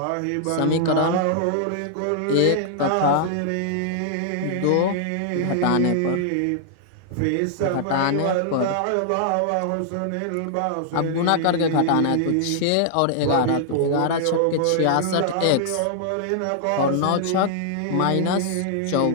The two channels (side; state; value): both; different; correlation -0.01